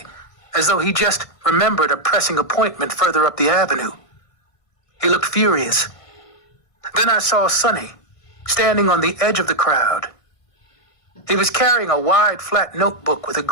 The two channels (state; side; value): late; right; 1.5 ms